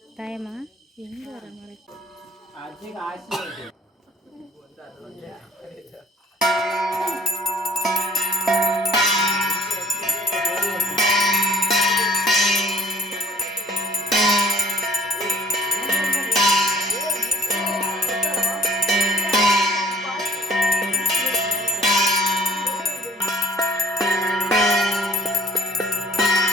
ಟೈಮ ಹೆಂಗಾರ ಮಾಡಿ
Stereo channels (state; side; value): normal; both; correlation 0.56